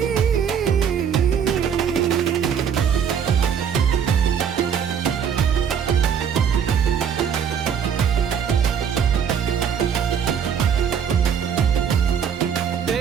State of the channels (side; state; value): left; quieter; 7.7 dB